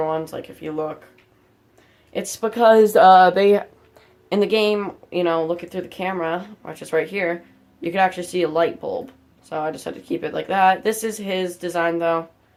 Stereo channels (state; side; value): identical; both; correlation 1.00